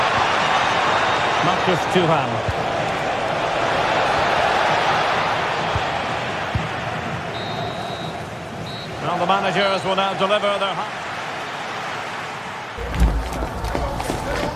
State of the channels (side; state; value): both; identical; correlation 1.00